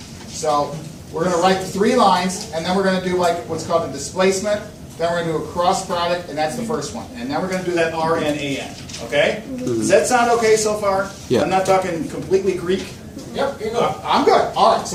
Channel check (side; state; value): both; identical; correlation 1.00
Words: So we're going to write the 3 lines, and then we're going to do like what's called the displacement. Then we're going to do a cross product, and that's the first one. And then we're going to do that RN AN. Okay? Does that sound okay so far? Yeah. I'm not talking completely Greek. Yep, you're good. I'm good. All right,